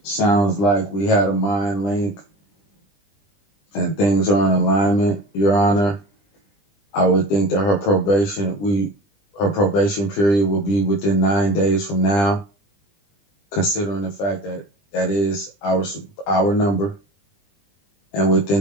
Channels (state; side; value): late; right; 20 ms